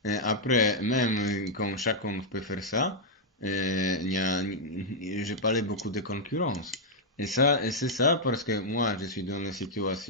après, même quand chacun peut faire ça, je parlais beaucoup de concurrence. Et c'est ça parce que moi, je suis dans une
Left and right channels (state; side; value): normal; both; correlation -0.05